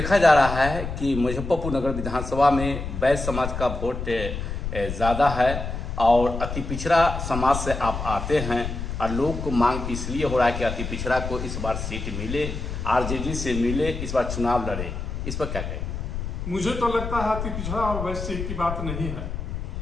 जा रहा है कि मुजफ्फरपुर नगर विधानसभा में वैश्य समाज का वोट ज़्यादा है और अति पिछड़ा समाज से आप आते हैं और लोग को मांग इसलिए हो रहा है कि अति पिछड़ा को इस बार सीट मिले, आरजेडी से मिले, इस बार चुनाव लड़े। इस पर क्या कहें? मुझे तो लगता है अति पिछड़ा और वैश्य की बात नहीं है।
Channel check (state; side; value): noise; left; rumble, 5 dB below the sound